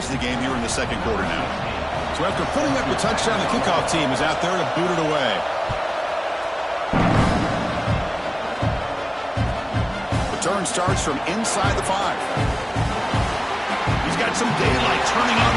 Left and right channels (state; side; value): identical; both; correlation 1.00